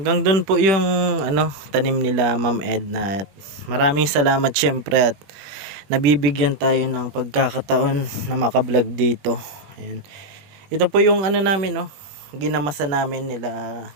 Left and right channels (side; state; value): left; late; 21 ms